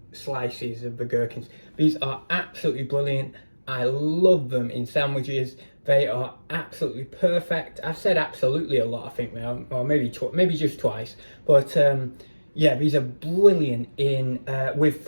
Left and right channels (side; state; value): both; inverted; correlation -1.00